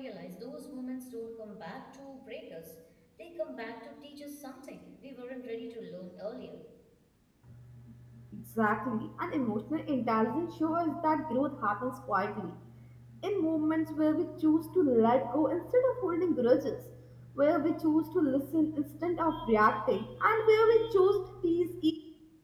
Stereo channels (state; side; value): identical; both; correlation 1.00